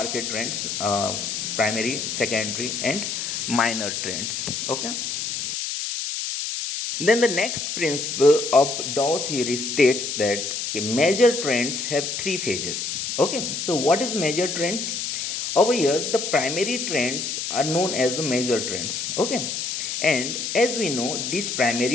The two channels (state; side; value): noise; left; hiss, 3 dB below the sound